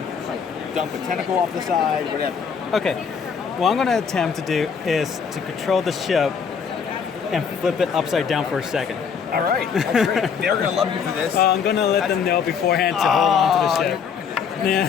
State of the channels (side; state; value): right; quieter; 6.6 dB